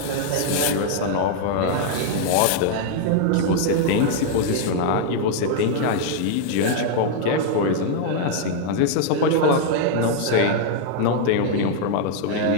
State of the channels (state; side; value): different; both; correlation 0.00